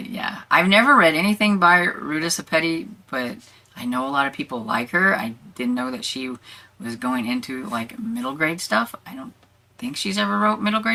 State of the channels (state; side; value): identical; both; correlation 1.00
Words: yeah, I've never read anything by Ruta Sepeti, but I know a lot of people like her. I didn't know that she was going into like middle grade stuff. I don't think she's ever wrote middle